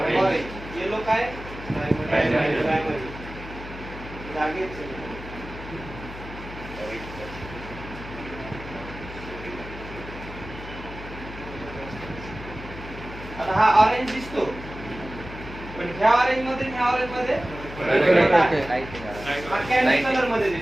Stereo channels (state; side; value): noise; left; hum, 12 dB below the sound